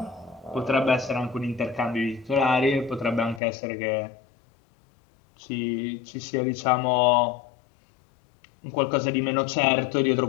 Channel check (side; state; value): right; drops out; at 3.4 s